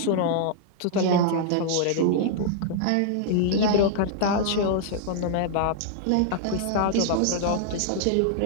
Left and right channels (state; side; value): different; both; correlation -0.01